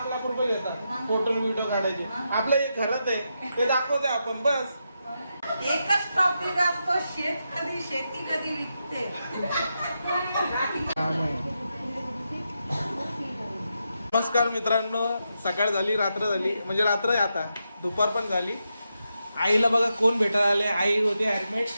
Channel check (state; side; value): inverted; both; correlation -0.86